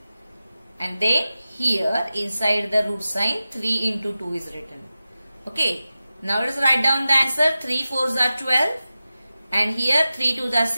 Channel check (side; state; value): both; inverted; correlation -0.94